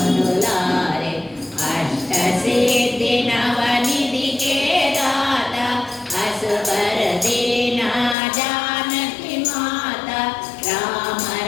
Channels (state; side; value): drops out; right; at 8.2 s